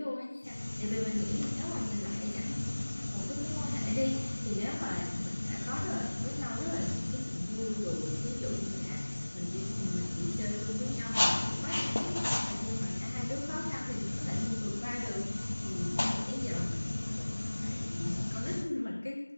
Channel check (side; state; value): both; inverted; correlation -1.00